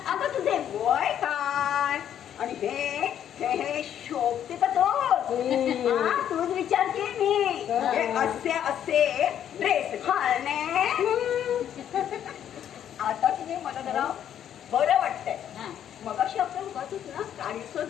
अगं तुझे वय काय आणि हे शोभते का तूच विचारते मी. हे असे ड्रेस घालणे आता की मला जरा बरं वाटतंय. हा. मग अशी आपण बघतच ना, काळीचं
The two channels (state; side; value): quieter; right; 9.9 dB